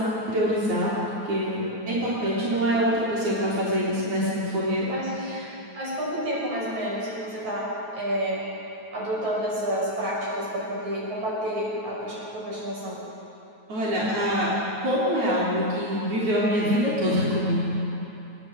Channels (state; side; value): late; left; 9.2 ms